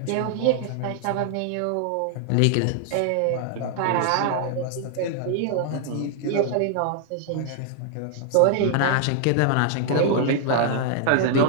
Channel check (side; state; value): both; different; correlation 0.00